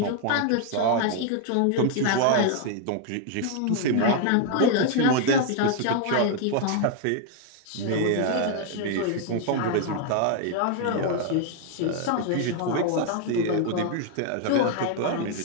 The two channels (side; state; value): both; different; correlation 0.00